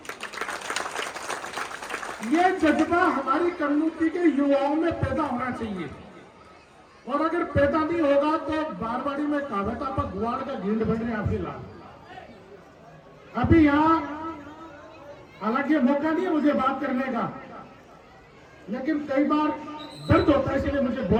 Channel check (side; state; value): both; identical; correlation 1.00